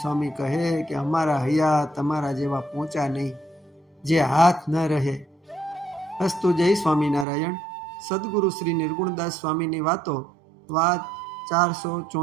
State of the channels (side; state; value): left; drops out; at 7.2 s